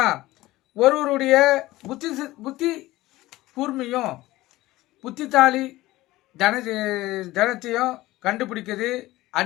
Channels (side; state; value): right; quieter; 17.7 dB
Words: ஒருவருடைய புத்தி கூர்மையும் புத்தித்தாலி தனத்தையும் கண்டுபிடிக்கிறது